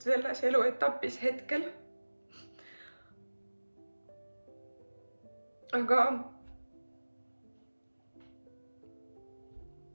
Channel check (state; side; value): inverted; both; correlation -1.00